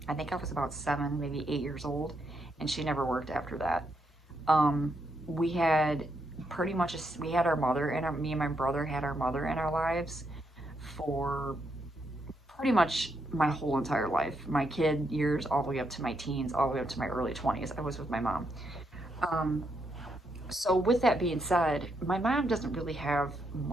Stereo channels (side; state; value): both; normal; correlation 0.79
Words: I think I was about 7, maybe 8 years old, and she never worked after that. We had we had our mother and me and my brother had our mother in our lives for pretty much my whole entire life. My kid years all the way up to my teens, all the way up to my early 20s. I was with my mom. Um, So with that being said, my mom doesn't really have